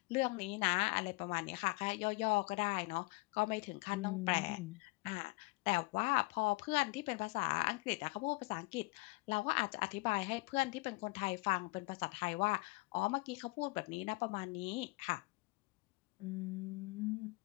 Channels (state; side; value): quieter; right; 25.2 dB